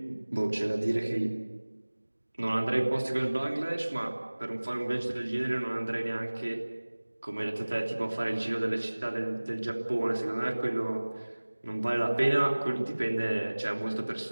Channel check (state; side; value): inverted; both; correlation -1.00